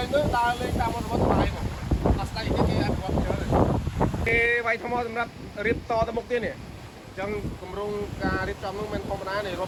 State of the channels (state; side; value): identical; both; correlation 1.00